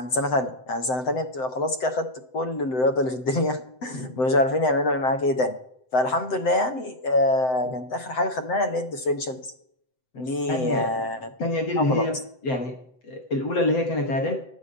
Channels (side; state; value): right; late; 7.8 ms